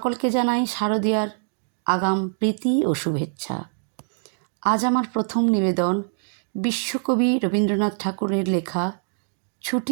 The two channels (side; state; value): left; silent; digital silence